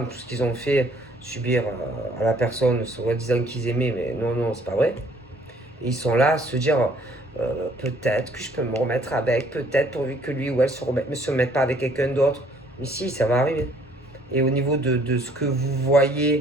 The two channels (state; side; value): normal; both; correlation 0.60